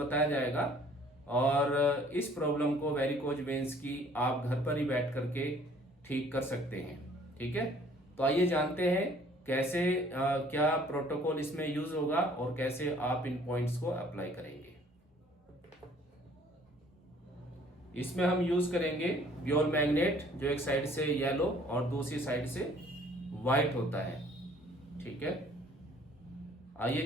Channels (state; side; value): normal; both; correlation 0.56